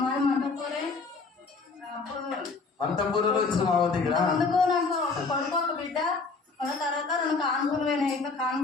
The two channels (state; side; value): quieter; right; 4.2 dB